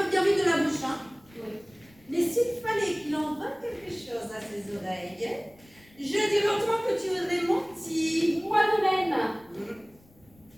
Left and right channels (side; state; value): left; noise; rumble, 28 dB below the sound